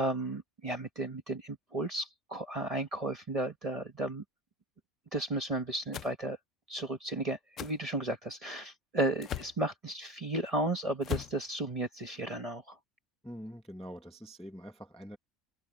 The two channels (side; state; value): both; normal; correlation 0.30